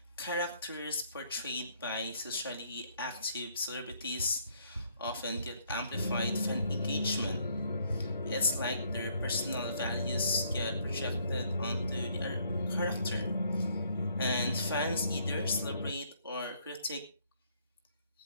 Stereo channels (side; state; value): both; inverted; correlation -0.67